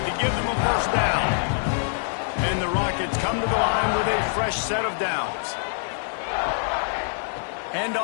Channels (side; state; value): right; silent; 62 dB below the other